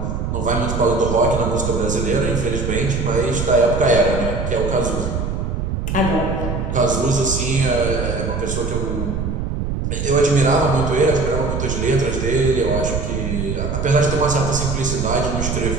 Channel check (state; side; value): noise; right; rumble, 2 dB below the sound